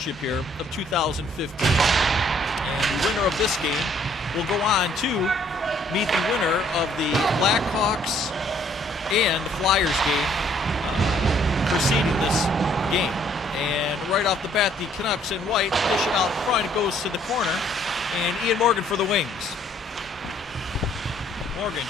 here of 2015. And the winner of this game will go on to meet the winner of the Blackhawks and the Flyers game preceding this game. And right off the bat, the Canucks in white dish it out front. It goes to the corner, and Ian Morgan for the Wings. Morgan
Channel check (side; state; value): both; normal; correlation 0.63